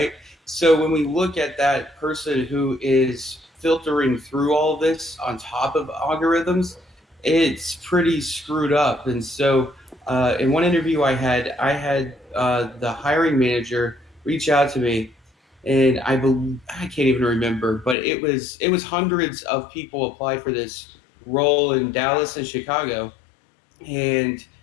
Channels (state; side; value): drops out; right; at 17.9 s